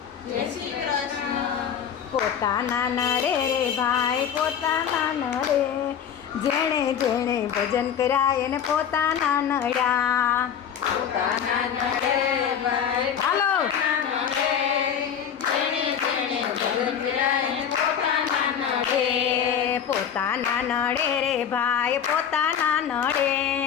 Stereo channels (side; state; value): right; quieter; 8.3 dB